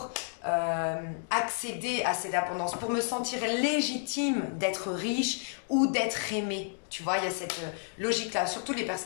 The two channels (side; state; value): right; silent; digital silence